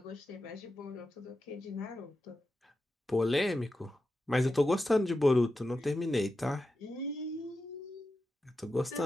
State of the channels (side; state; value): both; normal; correlation 0.90